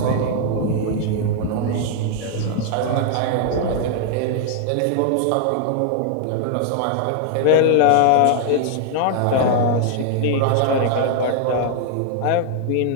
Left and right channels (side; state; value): both; different; correlation 0.00